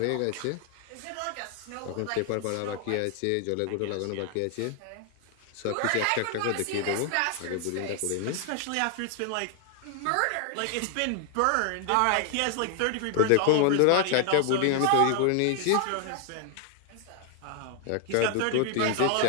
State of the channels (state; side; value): different; both; correlation 0.00